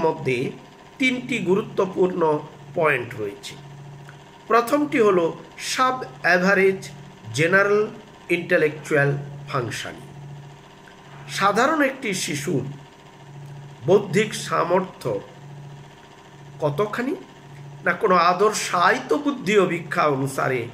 মধ্যে 3টি গুরুত্বপূর্ণ পয়েন্ট রয়েছে। প্রথমটি হলো sub average general intellectual functioning. সাধারণ একটি শিশুর বৌদ্ধিক সামর্থ্য কতখানি? না, কোনো আদর্শায়িত বুদ্ধি ও ভিক্ষা অনুসারে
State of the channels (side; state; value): both; identical; correlation 1.00